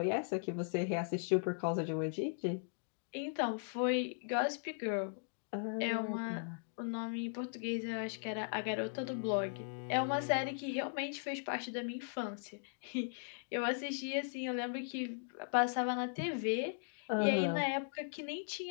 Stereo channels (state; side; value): silent; right; digital silence